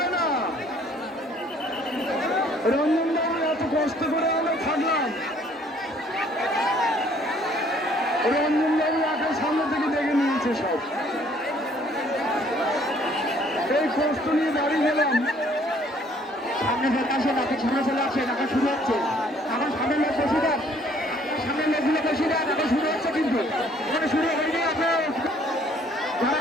না। রঞ্জন বাবু এত কষ্ট করে আমরা থাকলাম, রঞ্জন বাবু আগে সামনে থেকে দেখে নিয়েছে সব, এই কষ্ট নিয়ে বাড়ি গেলাম। সামনে চলে আসে, নাকি সামনে চলে আসে, নাকি শুরু হচ্ছে, এখন সামনে লোক বসে দেন, সামনে লোকগুলো বসে দেন, এখন শুরু হচ্ছে, কিন্তু এখানে শুরু হয়নি। আপনার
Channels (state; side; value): normal; both; correlation 0.60